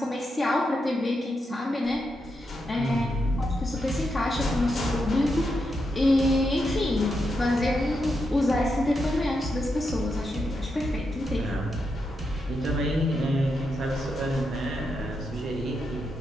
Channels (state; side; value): normal; both; correlation 0.84